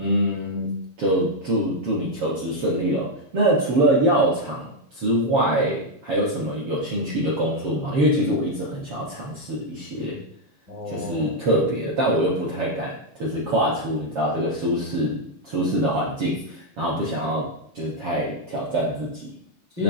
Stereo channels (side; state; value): left; late; 7.2 ms